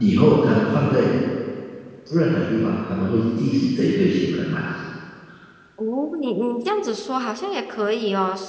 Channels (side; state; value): both; identical; correlation 1.00